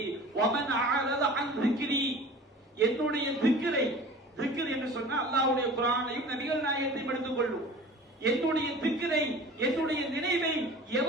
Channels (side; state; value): both; normal; correlation 0.41